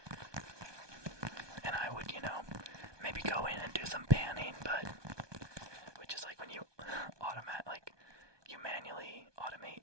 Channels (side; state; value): left; late; 1.2 ms